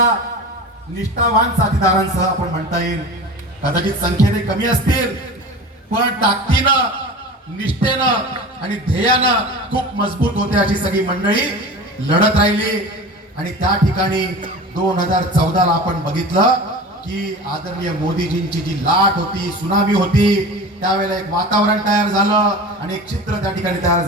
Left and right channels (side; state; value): both; normal; correlation 0.34